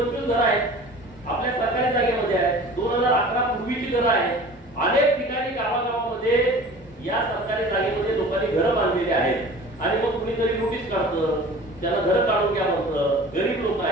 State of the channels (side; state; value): both; normal; correlation 0.42